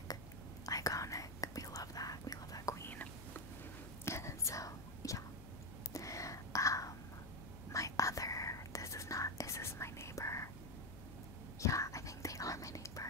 we love that queen. So yeah, my other, is this my neighbor? Yeah, I think they are my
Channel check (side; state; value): left; noise; hum, 14 dB below the sound